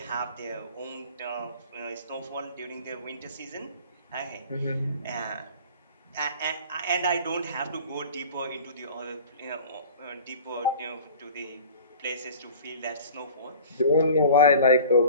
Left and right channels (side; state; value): both; inverted; correlation -0.43